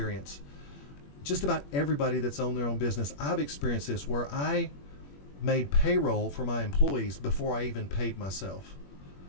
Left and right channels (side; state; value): right; late; 21 ms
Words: Just about everybody that's owned their own business, I've experienced this, where I made payroll for my employees before I even paid myself.